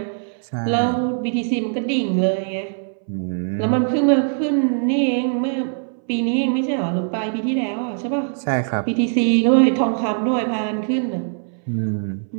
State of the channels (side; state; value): left; silent; 64 dB below the other